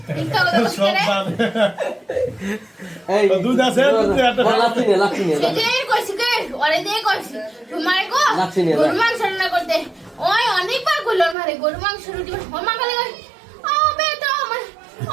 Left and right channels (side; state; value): left; drops out; at 11.4 s